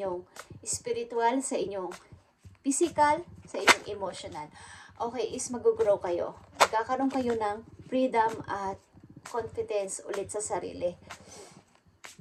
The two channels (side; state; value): both; identical; correlation 1.00